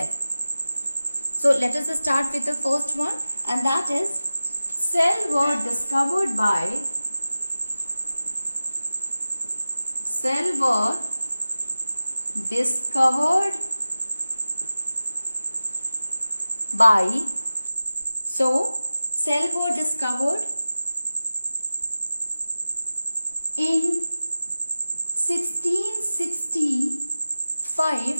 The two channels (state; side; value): inverted; both; correlation -0.96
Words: So let us start with the first one, and that is cell were discovered by in